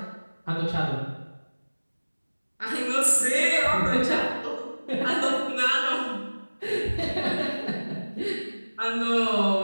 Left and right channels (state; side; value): inverted; both; correlation -1.00